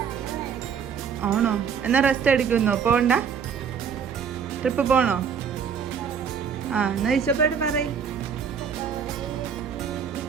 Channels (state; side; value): quieter; left; 7.0 dB